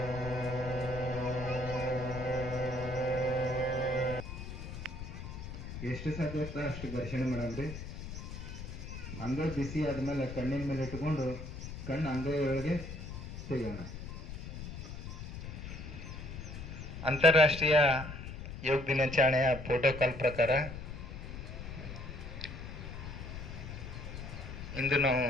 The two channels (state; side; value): noise; left; rumble, 9 dB below the sound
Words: ಎಷ್ಟು ಸಾಧ್ಯ ಅಷ್ಟು ಘರ್ಷಣೆ ಮಾಡಲ್ರಿ. ಅಂಗೈ ಬಿಸಿ ಆದ್ಮೇಲೆ ಕಣ್ಣಿನ ಮೇಲೆ ಇಟ್ಕೊಂಡು ಕಣ್ಣು ಅಂಗೈ ಒಳಗೆ ತೆಗೋಣ. ಅಂತಾರಾಷ್ಟ್ರೀಯ ಯೋಗ ದಿನಾಚರಣೆಯ ಪ್ರೋಟೋಕಾಲ್ ಪ್ರಕಾರ ಇಂದು ನಾವು